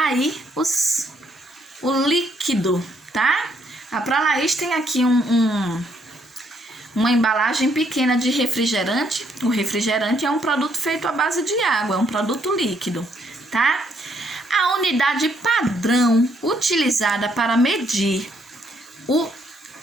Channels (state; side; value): normal; both; correlation 0.71